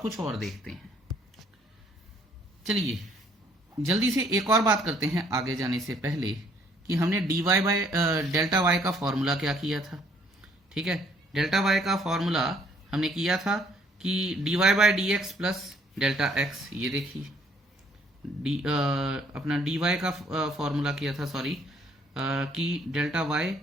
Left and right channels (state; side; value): normal; both; correlation 0.64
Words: और देखते हैं। चलिए जल्दी से एक और बात करते हैं आगे जाने से पहले कि हमने dy बाय डेल्टा y का फॉर्मूला क्या किया था, ठीक है। डेल्टा y का फॉर्मूला हमने किया था कि dy by dx plus delta x। ये देखिए अपना dy का फॉर्मूला किया था, सॉरी, कि delta y